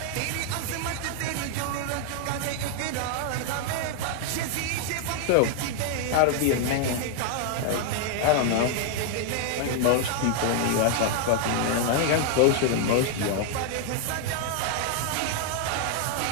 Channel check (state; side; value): different; both; correlation 0.00